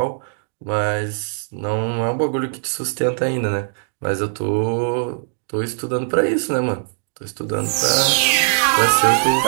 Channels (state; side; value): silent; left; digital silence